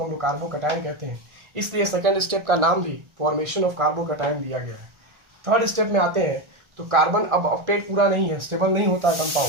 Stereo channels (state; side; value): late; left; 1.4 ms